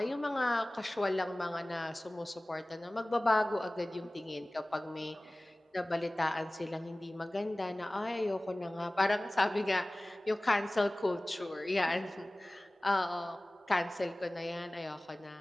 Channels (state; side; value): normal; both; correlation 0.98